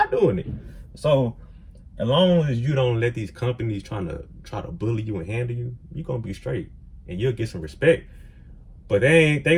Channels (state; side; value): identical; both; correlation 1.00